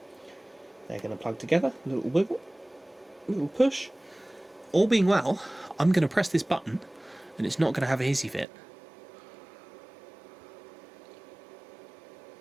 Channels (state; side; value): drops out; left; at 8.5 s